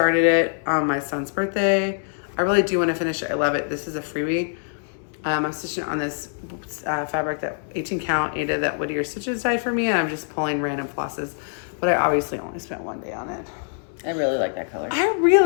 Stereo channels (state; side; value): silent; right; 62 dB below the other